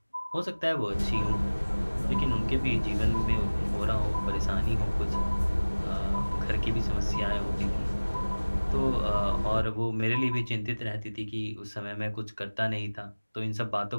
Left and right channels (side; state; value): both; inverted; correlation -1.00